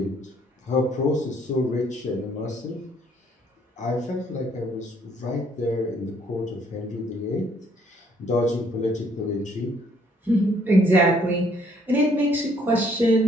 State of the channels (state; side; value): normal; both; correlation 0.65